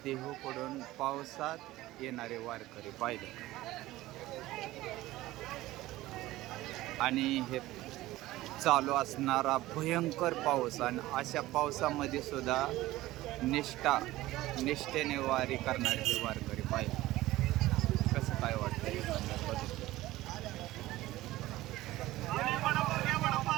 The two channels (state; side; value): quieter; left; 17.0 dB